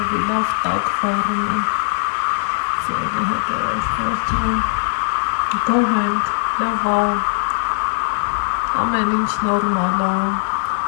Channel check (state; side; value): silent; right; digital silence